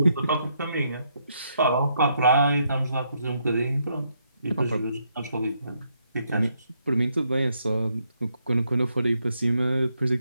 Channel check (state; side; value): inverted; both; correlation -0.76